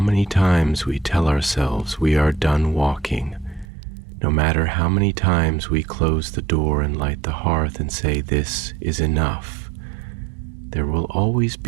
times we tell ourselves we are done walking, no matter how many times we close the door and light the hearth and say this is enough, there will always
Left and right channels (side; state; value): left; drops out; at 3.7 s